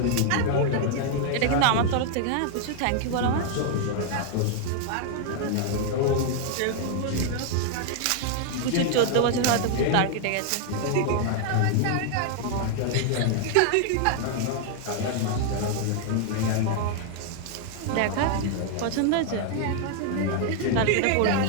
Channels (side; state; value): both; different; correlation 0.00